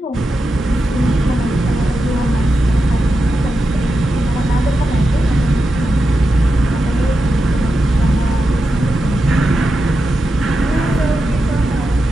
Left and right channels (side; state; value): both; normal; correlation 0.89